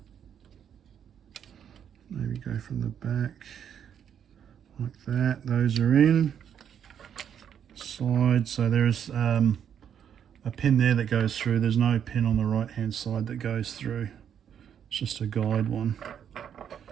Maybe go from the back like that. Those are in. Side, so there's a pin there that goes through. There's no pin on the right hand side that goes through. It's just a guide one.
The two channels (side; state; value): left; quieter; 8.6 dB